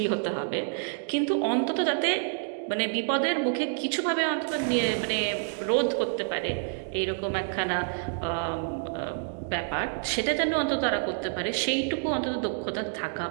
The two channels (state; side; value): silent; left; digital silence